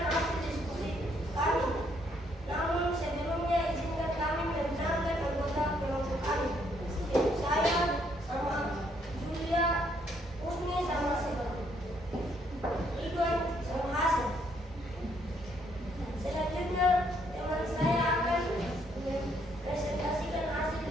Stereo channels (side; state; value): both; normal; correlation 0.70